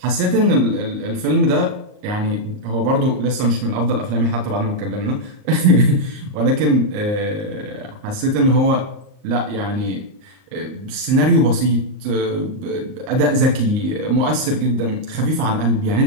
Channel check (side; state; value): left; late; 38 ms